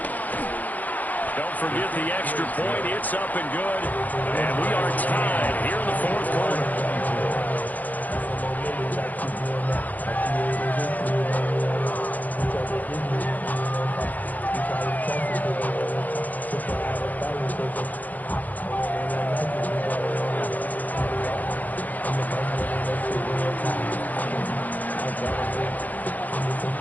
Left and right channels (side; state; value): right; late; 0.080 ms